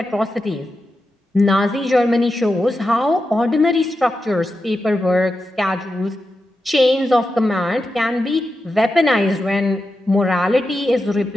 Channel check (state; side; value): normal; both; correlation 0.89